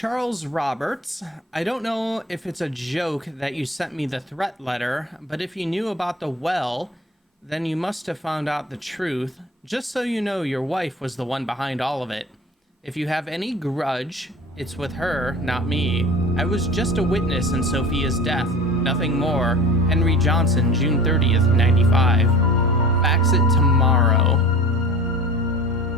Roberts. I don't know if it's a joke that you sent me the threat letter, but if you knew about the well, then you must have found out the truth. Just so you know, your wife was the one behind all of it. If you have any grudge, it's with her, not me. I was just a witness in Sophia's death, nothing more. Henry Johnson, June 30th, 95. Fax it tomorrow.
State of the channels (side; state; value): both; normal; correlation 0.39